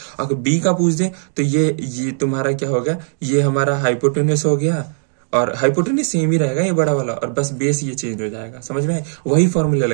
अगर बी का पूछ दे तो ये तुम्हारा क्या हो गया? ये हमारा हाइपोटेनस हो गया और हाइपोटेन्यूज सेम ही रहेगा ये बड़ा वाला, और बस बेस ये चेंज हो जाएगा। समझ में आए? वही फॉर्मूला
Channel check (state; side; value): silent; left; digital silence